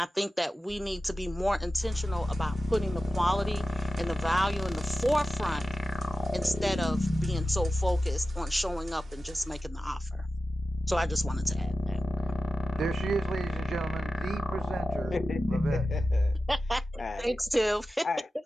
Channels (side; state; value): both; normal; correlation 0.93